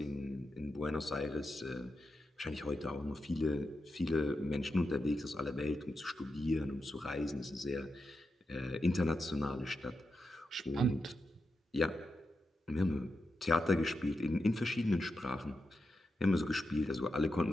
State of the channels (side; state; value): both; normal; correlation 0.88